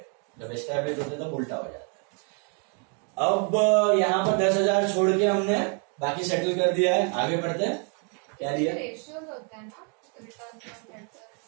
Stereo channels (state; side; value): quieter; left; 39.4 dB